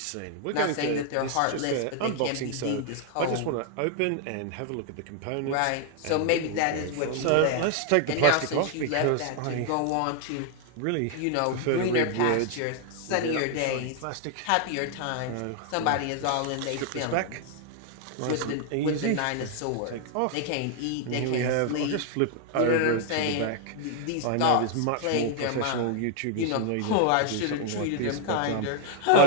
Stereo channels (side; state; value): both; different; correlation 0.00